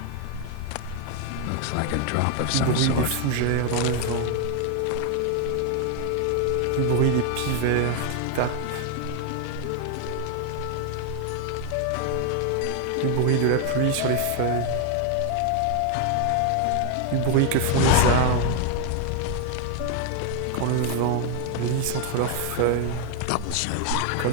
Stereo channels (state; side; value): different; both; correlation 0.01